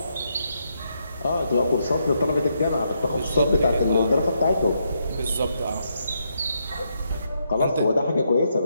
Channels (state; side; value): inverted; both; correlation -0.79